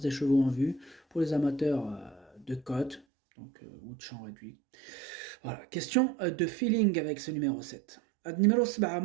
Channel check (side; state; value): left; drops out; at 3.1 s